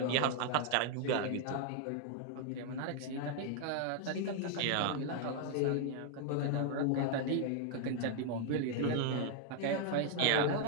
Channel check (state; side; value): different; both; correlation 0.00